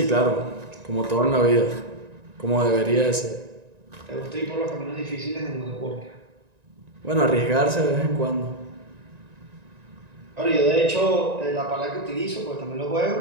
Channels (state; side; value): late; left; 1.9 ms